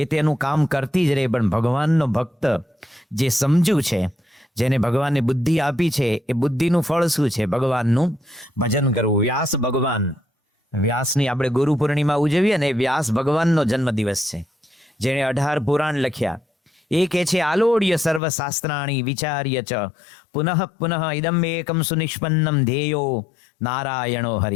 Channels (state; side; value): drops out; right; at 18.2 s